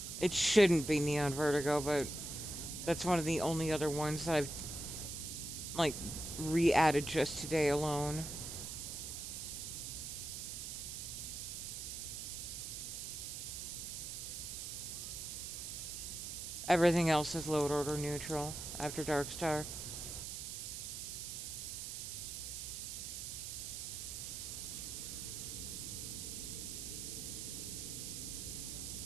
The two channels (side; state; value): right; noise; hiss, 6 dB below the sound